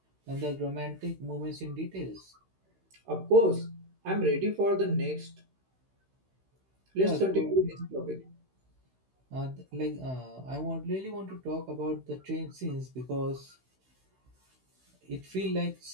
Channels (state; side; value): late; left; 16 ms